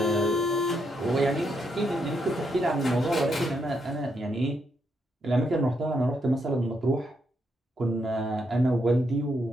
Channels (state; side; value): normal; both; correlation 0.78